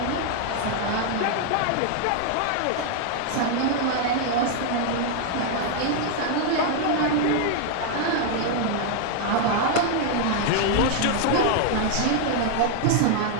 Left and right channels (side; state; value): both; different; correlation 0.00